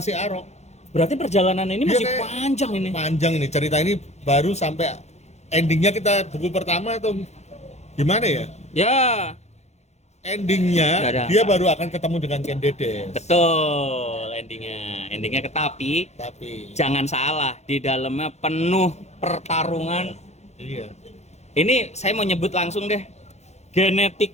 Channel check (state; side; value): late; right; 0.32 ms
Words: Arok. Berarti perjalanan ini Dia masih kayak- panjang ini. Panjang ini cerita ini baru sampai endingnya kita buku pertama atau gimana ya? Ya, Endingnya Nggak ada dia apa. baru akan ketemu dengan Ken Dedes. betul endingnya. Endingnya tapi Tapi jangan salah, di dalamnya penuh pertarungan. iya. Ini saya mau nyebut langsung deh.